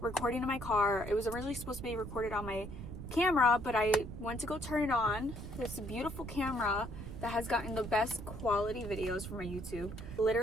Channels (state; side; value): noise; right; rumble, 9 dB below the sound